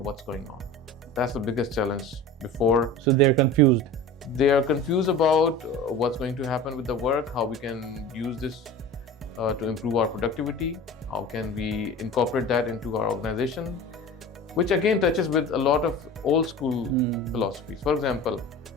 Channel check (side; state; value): both; normal; correlation 0.36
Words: what's going on. That's the biggest challenge before. So they're confused. They are confused about what's going to happen with the work, how we can use this to improve our productivity, how can we incorporate that into our organization, which again touches with a lot of old school philosophies. For example,